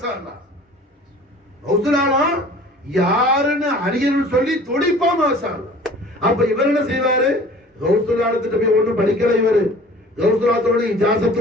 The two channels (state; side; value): normal; both; correlation 0.47